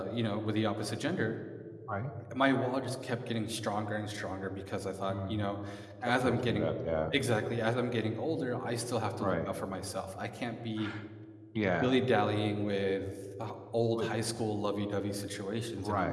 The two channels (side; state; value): both; identical; correlation 1.00